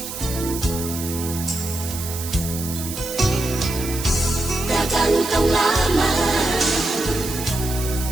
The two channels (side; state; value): right; noise; hiss, 8 dB below the sound